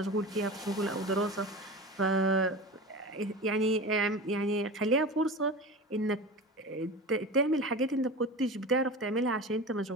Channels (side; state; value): both; normal; correlation 0.30